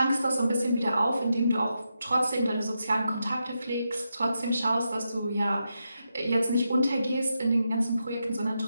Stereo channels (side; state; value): both; inverted; correlation -0.86